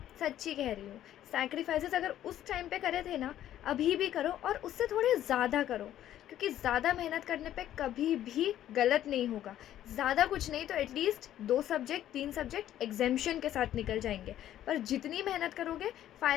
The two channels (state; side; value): quieter; right; 12.1 dB